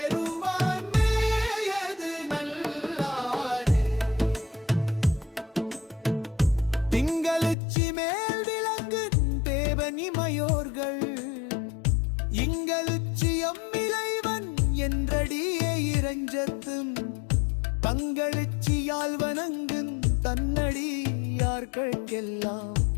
மேயது நல்லாரே. திங்களுச்சி மேல் விளங்கு தேவனிமையோர்கள் இங்களுச்சி அம்மிளைவன் என்றடியே இறைஞ்சத்தும் தங்களுச்சியால் வணங்குன் தன்னடியார்கெல்லாம்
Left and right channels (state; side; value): drops out; right; at 7.6 s